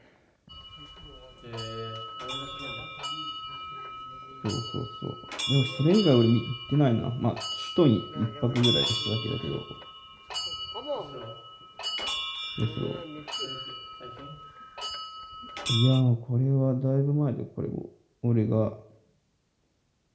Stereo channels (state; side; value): identical; both; correlation 1.00